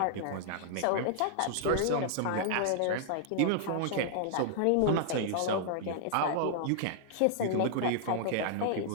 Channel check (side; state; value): both; different; correlation -0.01